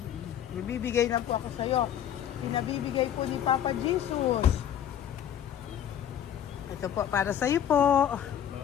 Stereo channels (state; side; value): quieter; right; 9.9 dB